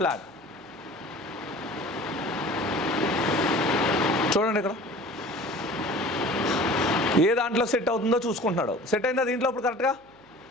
చూడండి ఇక్కడ ఏ దాంట్లో సెట్ అవుతుందో చూసుకుంటున్నాడు. సెట్ అయిందా దీంట్లో ఇప్పుడు కరెక్ట్గా,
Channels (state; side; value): noise; right; hum, 28 dB below the sound